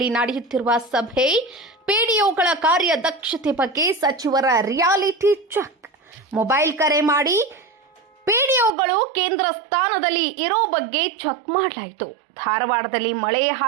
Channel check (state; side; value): drops out; left; at 8.8 s